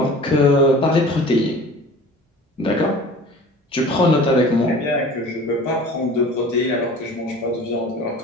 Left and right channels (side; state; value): both; normal; correlation 0.42